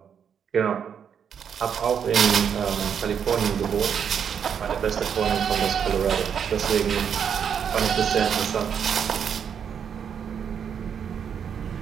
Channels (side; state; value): left; quieter; 7.7 dB